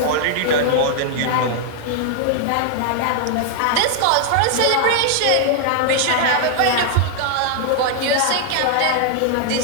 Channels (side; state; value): both; different; correlation 0.00